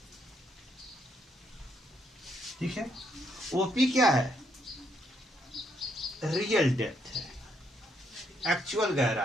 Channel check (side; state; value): both; normal; correlation 0.74